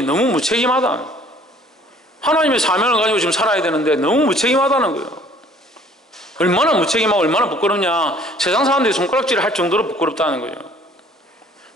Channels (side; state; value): both; normal; correlation 0.55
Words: 너무 무책임하다는 거예요. 하나님의 사명을 가지고 지금 살아야 되는데 너무 무책임하다는 거예요. 얼마나 무책임하고 얼마나 부끄럽냐. 세상 사람들이 손가락질을 할 정도로 부끄럽다는 거예요.